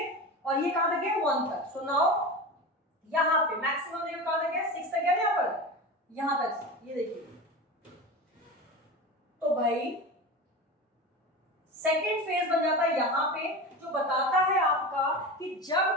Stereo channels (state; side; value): normal; both; correlation 0.27